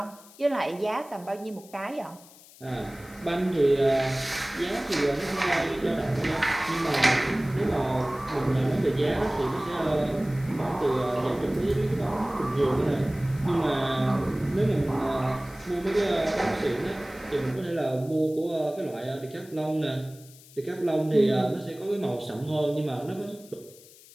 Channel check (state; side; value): noise; left; hiss, 22 dB below the sound